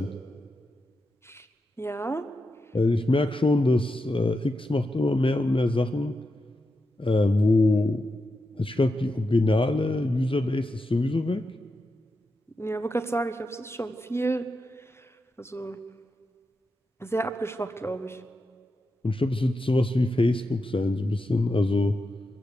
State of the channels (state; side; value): normal; both; correlation 0.87